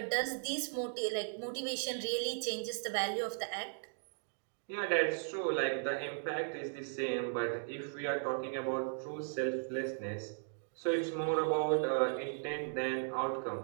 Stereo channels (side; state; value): left; silent; digital silence